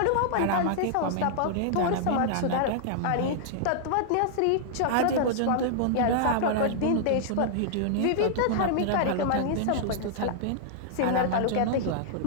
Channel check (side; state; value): both; different; correlation -0.01